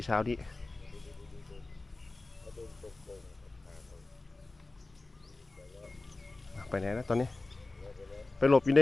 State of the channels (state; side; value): quieter; right; 3.2 dB